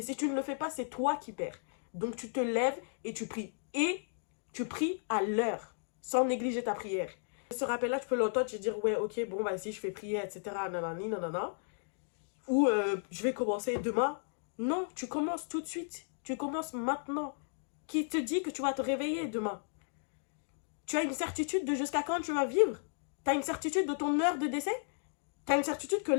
si tu ne le fais pas, c'est toi qui perds. Donc tu te lèves et tu pries. Et tu pries à l'heure, sans négliger ta prière. Ce rappel-là, tu peux l'entendre, tu te dire, ouais, ok, bon, bah si je fais prier, etc., nanani, nanana. Ou je vais commencer demain. Non, tu commences tout de suite. Tu commences maintenant. Qui te dit que tu vas te réveiller demain? Tu as une certitude de jusqu'à quand tu vas vivre? Tu as une certitude de ton heure de décès? Tu as une certitude que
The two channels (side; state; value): right; silent; digital silence